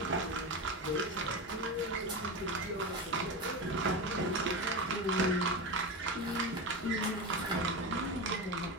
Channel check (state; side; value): normal; both; correlation 0.20